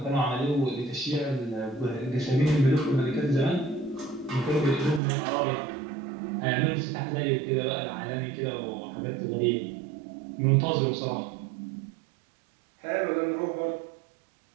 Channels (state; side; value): drops out; left; at 5.0 s